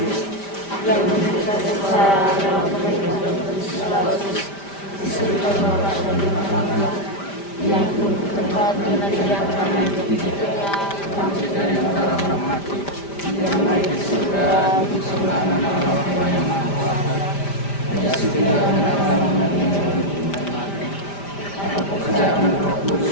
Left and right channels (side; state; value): right; late; 5.1 ms